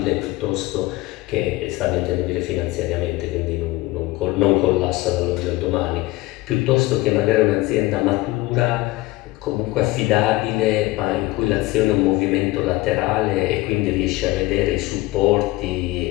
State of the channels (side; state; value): right; quieter; 19.7 dB